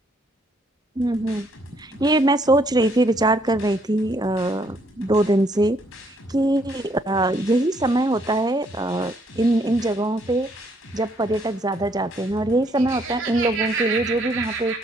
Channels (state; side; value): normal; both; correlation 0.68